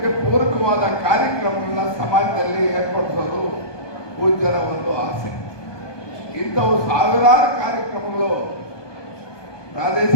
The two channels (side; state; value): right; late; 1.2 ms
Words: ಪೂರಕವಾದ ಕಾರ್ಯಕ್ರಮಗಳನ್ನ ಸಮಾಜದಲ್ಲಿ ಏರ್ಪಡಿಸೋದು ಪೂಜ್ಯರ ಒಂದು ಆಸೆ. ಇಂಥವು ಸಾವಿರಾರು ಕಾರ್ಯಕ್ರಮಗಳು